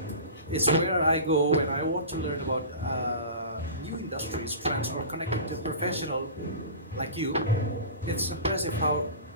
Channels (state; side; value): inverted; both; correlation -0.34